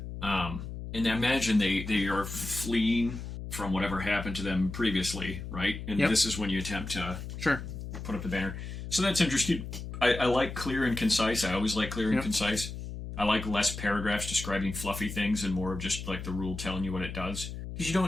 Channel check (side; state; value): left; noise; hum, 8 dB below the sound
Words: And I imagine they are fleeing from whatever happened to them previously, right? And this is when you attempt to put up the banner. So that's interesting. I like clear and concise. I always like clear and concise. I like less paragraphs describing fluffy things and more of just like the rule telling you what it does. Because